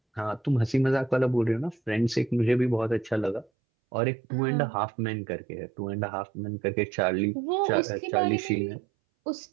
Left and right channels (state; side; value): drops out; left; at 3.5 s